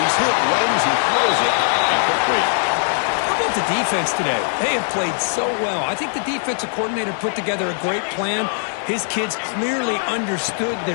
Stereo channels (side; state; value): right; silent; 65 dB below the other